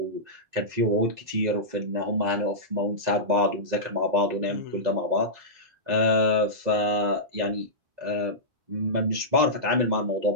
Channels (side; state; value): left; late; 2.0 ms